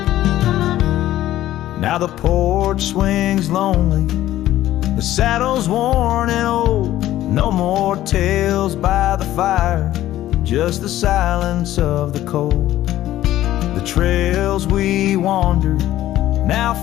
Now the porch swings lonely, the saddle's worn and old. No more tales by the fire, just the silence of the cold. The trails we wandered, now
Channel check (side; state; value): right; quieter; 13.9 dB